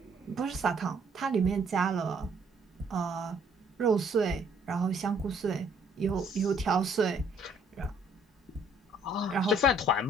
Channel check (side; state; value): both; normal; correlation 0.63